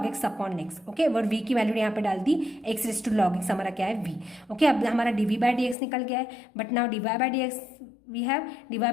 x upon x। Okay, और v की वैल्यू यहाँ पे डाल दी x raise to log x हमारा क्या है v। ओके, अब हमारा dv/dx निकल गया है, but now dy/dx we have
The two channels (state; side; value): drops out; right; at 5.8 s